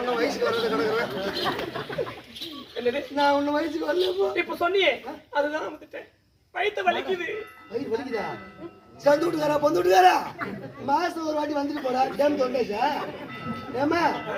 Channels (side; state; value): both; identical; correlation 1.00